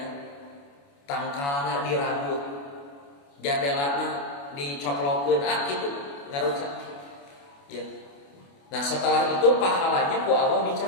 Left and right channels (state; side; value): late; right; 28 ms